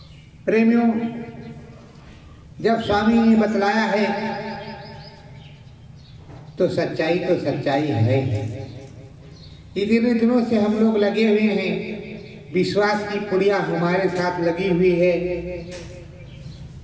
प्रेमियों, जब स्वामी ने बतलाया है तो सच्चाई है। इतने दिनों से हम लोग लगे हुए हैं, विश्वास की पुड़िया हमारे साथ लगी हुई है।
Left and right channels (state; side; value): identical; both; correlation 1.00